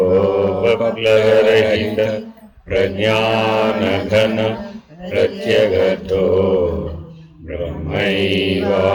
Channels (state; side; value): identical; both; correlation 1.00